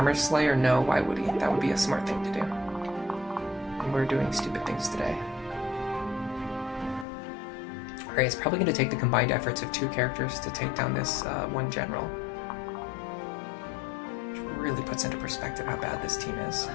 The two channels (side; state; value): right; drops out; at 7.1 s